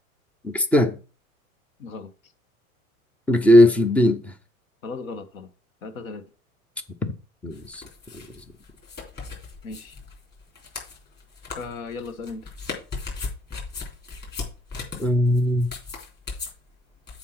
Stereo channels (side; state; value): both; normal; correlation 0.76